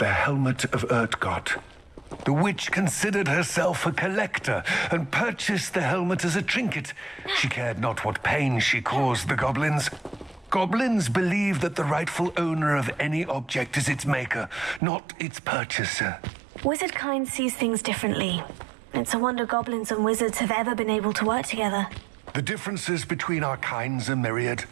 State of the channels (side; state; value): left; drops out; at 14.8 s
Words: Helmet of Urtgott. The witch considered herself a collector and purchased the helmet as a trinket. She cared not what pain she caused the goblins. Goblins believe that the rightful owner of any object is its maker, not its purchaser. Wizard kind sees things differently. It's a wonder goblins and wizards have ever been able to work together. The differences between our kinds are myriad.